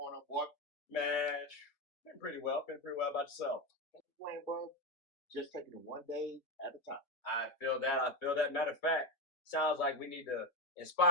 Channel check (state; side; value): late; right; 3.9 ms